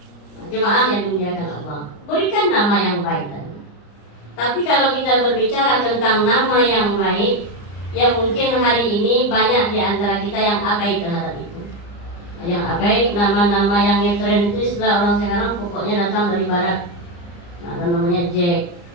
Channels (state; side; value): late; right; 34 ms